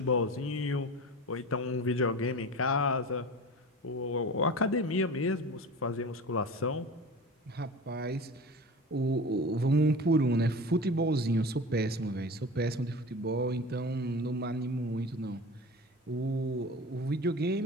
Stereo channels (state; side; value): normal; both; correlation 0.34